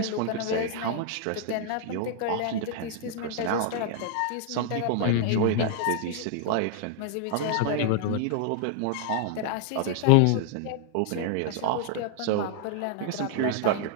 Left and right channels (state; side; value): different; both; correlation 0.00